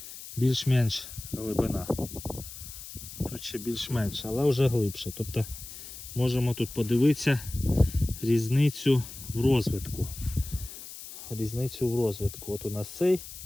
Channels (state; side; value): noise; left; hiss, 13 dB below the sound